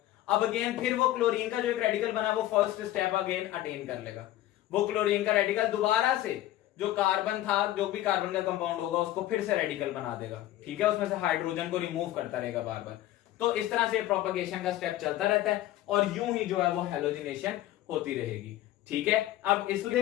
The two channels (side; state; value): right; quieter; 14.4 dB